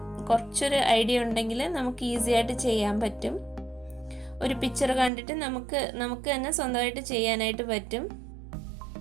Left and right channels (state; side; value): drops out; left; at 5.1 s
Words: കുറച്ചൊരു ഐഡിയ ഉണ്ടെങ്കിൽ നമുക്ക് ഈസി ആയിട്ട് ചെയ്യാൻ പറ്റും. ഒരു പിക്ചർ കണ്ടിട്ട് നമുക്ക് തന്നെ സ്വന്തമായിട്ട് ചെയ്യാനായിട്ട് പറ്റും.